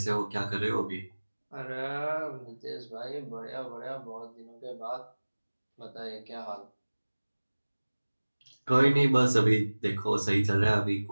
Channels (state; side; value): inverted; both; correlation -1.00